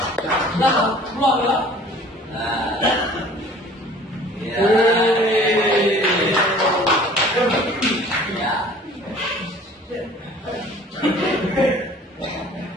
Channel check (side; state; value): both; normal; correlation 0.49